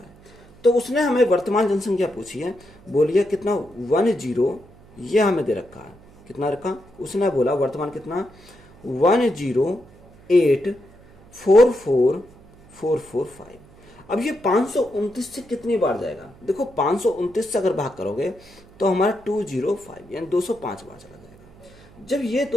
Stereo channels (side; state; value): right; noise; hum, 25 dB below the sound